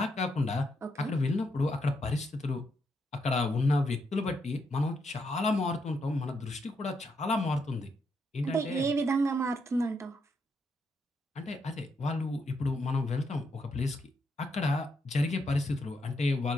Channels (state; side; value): normal; both; correlation 0.79